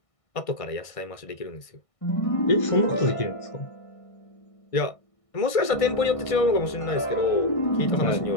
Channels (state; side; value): late; right; 1.6 ms